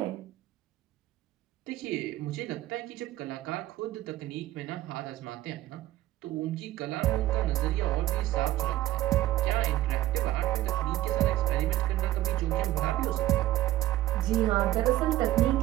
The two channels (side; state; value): left; quieter; 15.0 dB